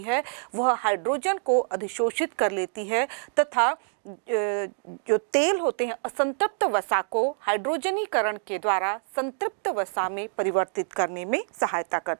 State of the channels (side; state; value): left; silent; digital silence